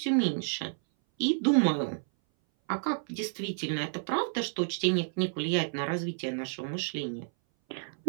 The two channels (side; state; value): left; silent; 58 dB below the other